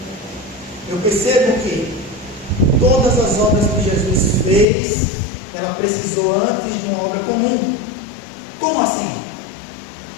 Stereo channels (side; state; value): right; drops out; at 4.7 s